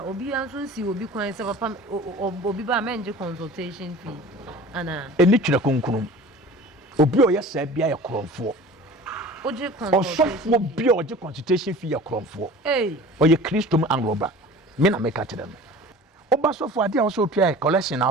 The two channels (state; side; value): normal; both; correlation 0.41